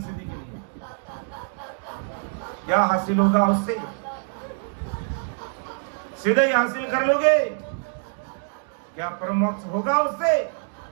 सिद्धि के लिए। क्या हासिल होगा उससे? सीधे ही हासिल कर लोगे? क्या परमोक्ष होगा उससे?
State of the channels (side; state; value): left; silent; 62 dB below the other